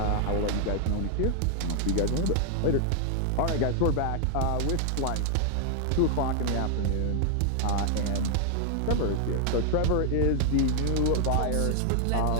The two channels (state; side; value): different; both; correlation 0.00